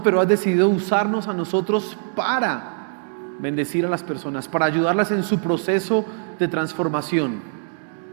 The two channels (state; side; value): silent; left; 64 dB below the other